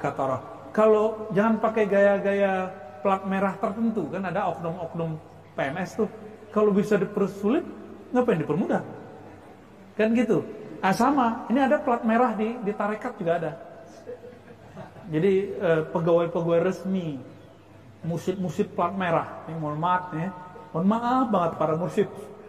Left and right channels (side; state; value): both; identical; correlation 1.00